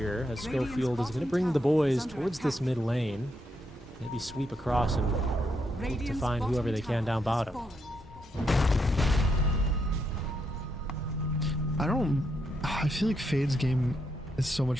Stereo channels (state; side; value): normal; both; correlation 0.80